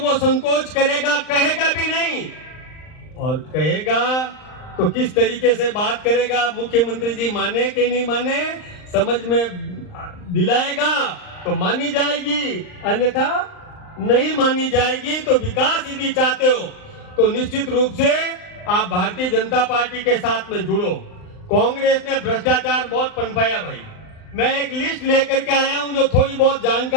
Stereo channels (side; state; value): right; late; 39 ms